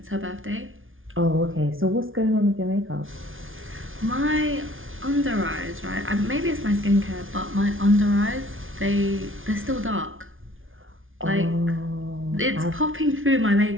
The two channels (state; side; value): late; left; 0.58 ms